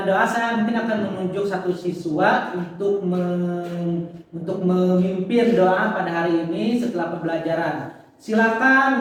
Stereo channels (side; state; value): both; identical; correlation 1.00